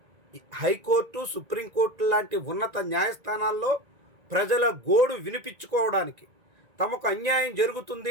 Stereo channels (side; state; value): left; late; 1.9 ms